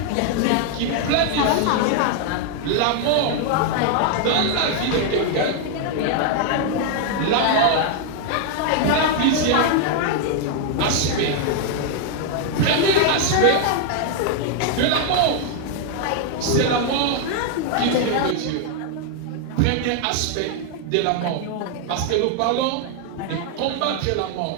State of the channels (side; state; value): both; different; correlation 0.00